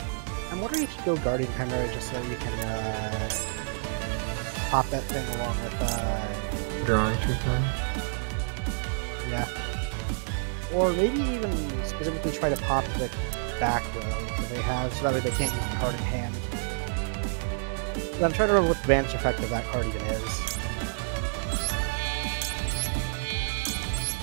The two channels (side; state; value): left; silent; 59 dB below the other